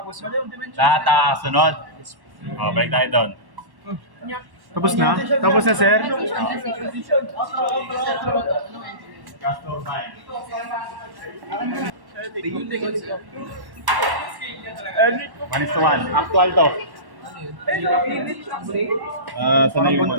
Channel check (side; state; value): left; late; 1.1 ms